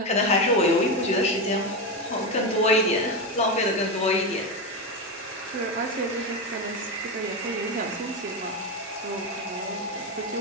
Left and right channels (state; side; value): normal; both; correlation 0.13